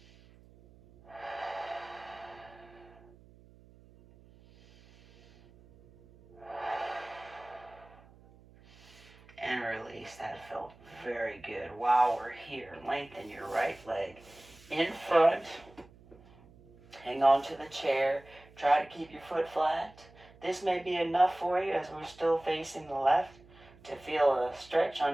And release. That felt very good. While we're here, lengthen your right leg in front. Hang on to the chair. Try to keep your foot flat. This may be enough for you as we're still facing the left to feel a stretch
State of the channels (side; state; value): right; noise; hum, 24 dB below the sound